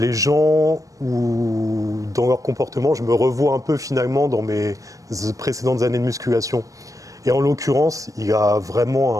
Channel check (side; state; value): left; late; 0.16 ms